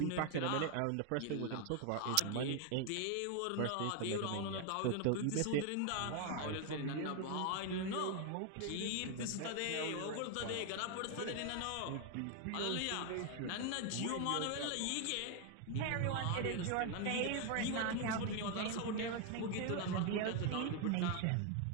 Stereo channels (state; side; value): different; both; correlation 0.01